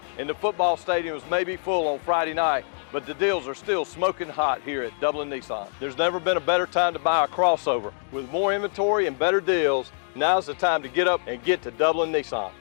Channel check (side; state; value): right; silent; digital silence